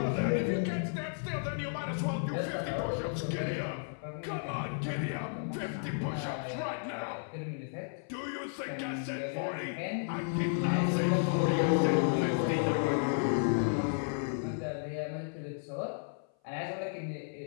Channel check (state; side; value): silent; right; 56 dB below the other